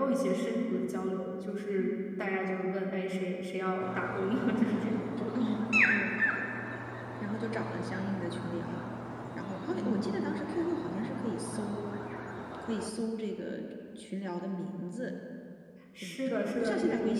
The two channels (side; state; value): both; identical; correlation 1.00